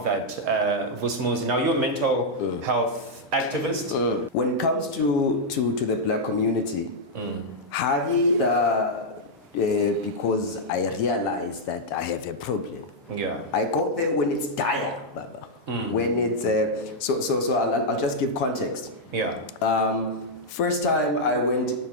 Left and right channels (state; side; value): normal; both; correlation -0.04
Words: that, Vusmuzi? Now you're a mental health activist? When it comes to the black community, because I realize that I have a problem. Yeah. I go there when it's dire, Baba. When it's so I'll just give context. Yeah. First time I went